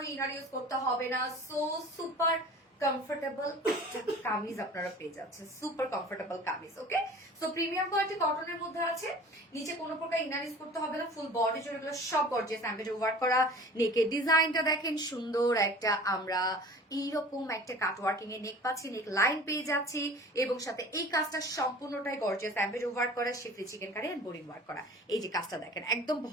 ইনার ইউজ করতে হবে না। সো সুপার কমফোর্টেবল কামিজ আপনারা পেয়ে যাচ্ছেন, সুপার কমফোর্টেবল কামিজ। ওকে, সো প্রিমিয়াম কোয়ালিটি কটনের মধ্যে আছে, নিচে কোনো প্রকার ইনার ইউজ করতে হবে না। ফুল বডি জুড়ে এগুলো সব গর্জিয়াস এমব্রয়ডারি ওয়ার্ক করা। নেকের ডিজাইনটা দেখেন, সুন্দর একটা আমরা এইরকম একটা কাট ওয়ার্কিং এর নেক পাচ্ছি, নেক লাইন পেয়ে যাচ্ছি এবং সাথে এই কাজটা সম্পূর্ণটাই গর্জিয়াস এমব্রয়ডারি ওয়ার্ক করা, schiffli chikankari and boring work করা। এই যে কাজটা দেখেন, একদম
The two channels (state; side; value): normal; both; correlation 0.42